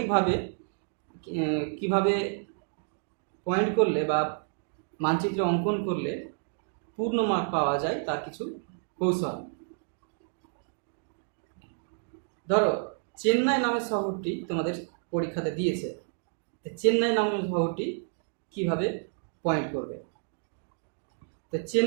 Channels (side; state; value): left; silent; digital silence